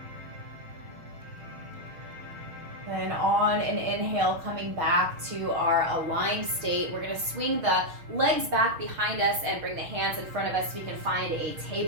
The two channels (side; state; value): left; late; 6.2 ms